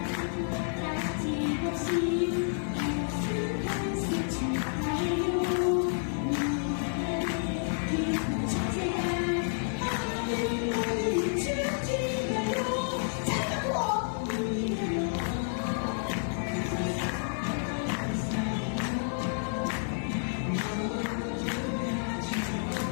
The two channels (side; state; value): right; silent; digital silence